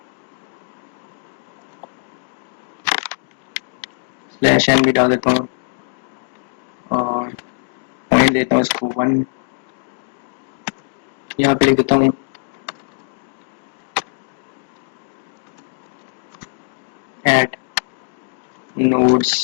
स्लैश एन भी डाल देता हूँ, और मैं देता हूँ इसको 1, यहाँ पे लिख देता हूँ add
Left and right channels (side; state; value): right; silent; digital silence